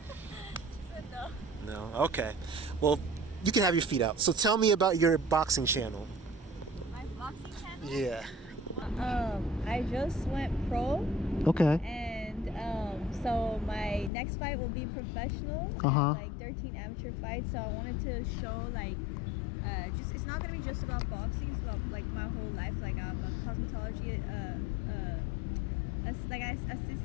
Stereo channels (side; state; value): right; drops out; at 14.1 s